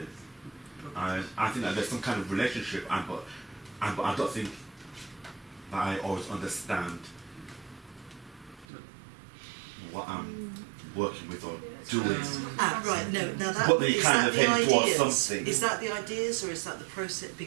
I think that there's some kind of relationship, but I don't think that I always understand what I'm working with or doing. Right, no, now that, But they is kind that of the head towards ideas? something. Is that the ideas or is that the process?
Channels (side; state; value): left; drops out; at 8.7 s